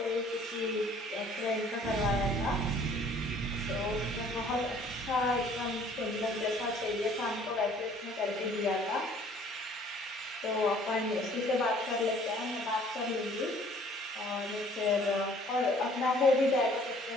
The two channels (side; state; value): both; normal; correlation 0.56